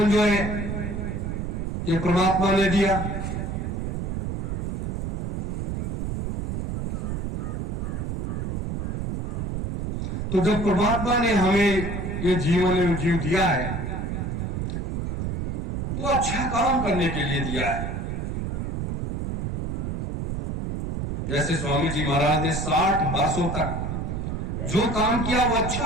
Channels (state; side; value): noise; right; rumble, 2 dB below the sound